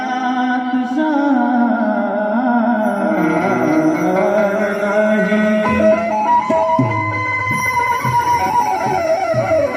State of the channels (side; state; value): both; identical; correlation 1.00